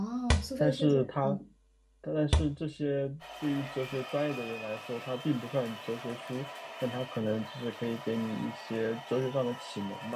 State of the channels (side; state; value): both; identical; correlation 1.00